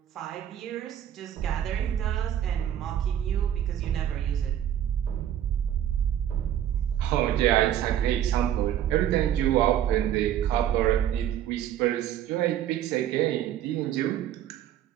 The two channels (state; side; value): quieter; left; 10.8 dB